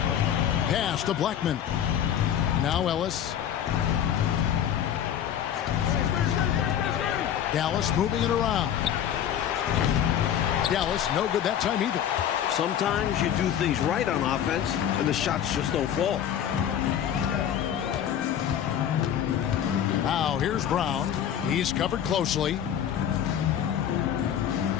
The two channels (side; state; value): right; quieter; 9.7 dB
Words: Pass to Blackman. Now Ellis. Dallas moving it around. Dallas no good that time either. Sometimes you do things right on offense, and the shots just don't fall. Now here's Brown. He's covered closely.